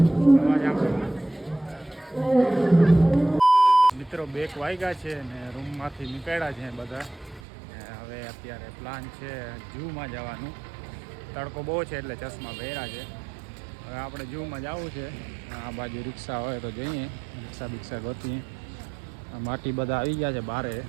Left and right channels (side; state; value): left; drops out; at 7.4 s